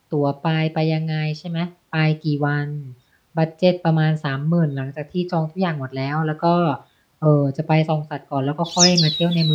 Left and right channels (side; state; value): both; identical; correlation 1.00